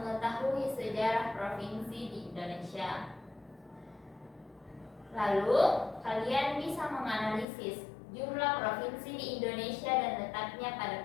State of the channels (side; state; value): right; drops out; at 7.5 s